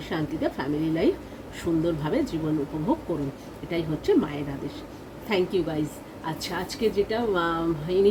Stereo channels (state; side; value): identical; both; correlation 1.00